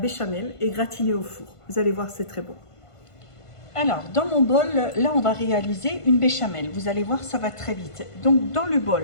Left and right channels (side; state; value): right; late; 1.5 ms